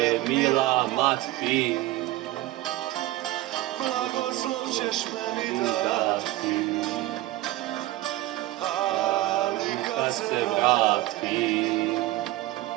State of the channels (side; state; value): left; quieter; 16.7 dB